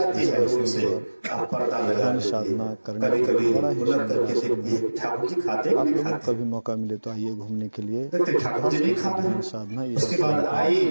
है रूम से, आप पर्दा लगा देती साधना है। करने कभी कभी बड़ा ही उलट करके सुंदर देखती है ठाकुर जी खाते आप नहीं लोगों को खाते, कभी मौका मिले तो आइए घूमने के लिए। देखते ठाकुर जी नहीं खा रहे। साधना ये उसके बाद आई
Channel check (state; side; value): inverted; both; correlation -1.00